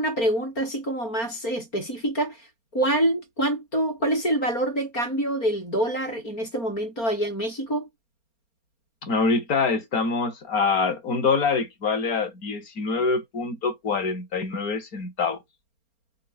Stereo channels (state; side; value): late; right; 4.3 ms